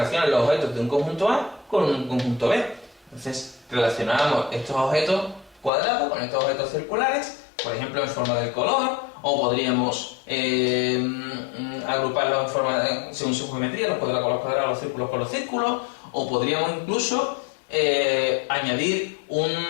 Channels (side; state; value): right; drops out; at 5.7 s